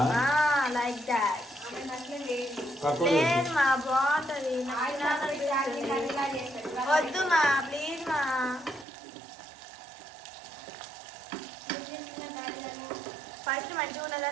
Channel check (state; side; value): drops out; left; at 8.8 s